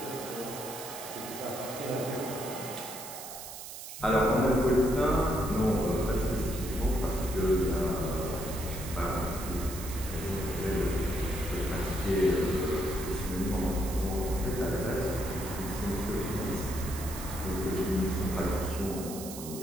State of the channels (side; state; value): right; noise; hiss, 11 dB below the sound